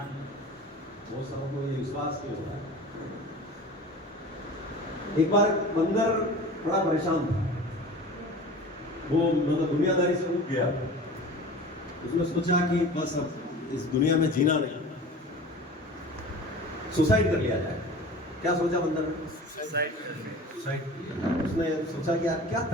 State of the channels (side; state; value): both; normal; correlation 0.38